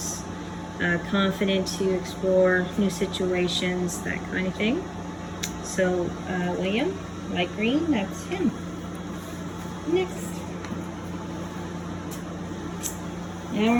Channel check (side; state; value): both; identical; correlation 1.00